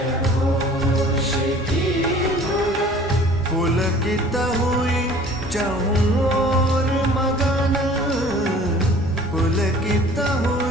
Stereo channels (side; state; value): both; normal; correlation 0.49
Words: पुलकित हुई चहु और मगन, पुलकित